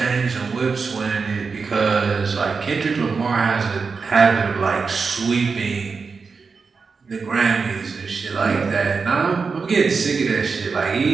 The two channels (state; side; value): quieter; left; 4.9 dB